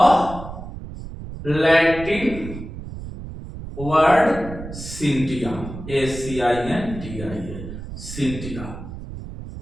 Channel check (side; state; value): right; noise; rumble, 11 dB below the sound